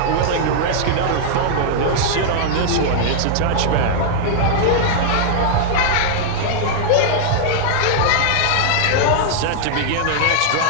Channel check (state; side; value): different; both; correlation -0.01